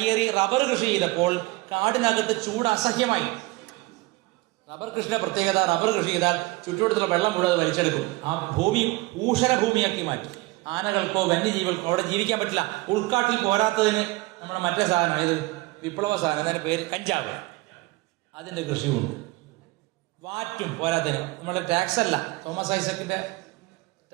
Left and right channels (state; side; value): quieter; left; 21.1 dB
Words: റബ്ബർ കൃഷി ചെയ്തപ്പോൾ കാടിനകത്ത് ചൂട് അസഹ്യമായി. റബ്ബർ കൃഷിയുടെ പ്രത്യേകത, റബ്ബർ കൃഷി ചെയ്താൽ ചുറ്റുവട്ടത്തുള്ള വെള്ളം മുഴുവൻ വലിച്ചെടുക്കും. ആ ഭൂമി ഊഷര ഭൂമിയാക്കി മാറ്റും. ആനകൾക്കോ വന്യജീവികൾക്കോ അവിടെ ജീവിക്കാൻ പറ്റില്ല. ഉൾക്കാട്ടിൽ പോരാത്തതിന് നമ്മുടെ മറ്റേ സാധനം, ഇത് വിപ്ലവ സാധനം, അതിൻ്റെ പേര് കഞ്ചാവ്, അതിൻ്റെ കൃഷിയുണ്ട്. വാറ്റും പോരാത്തതിന്. നമ്മുടെ ടാക്സ് അല്ല, തോമസ് ഐസക്കിന്റെ